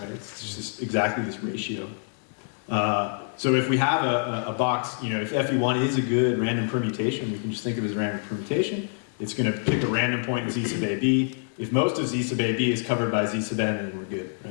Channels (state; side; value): silent; right; 61 dB below the other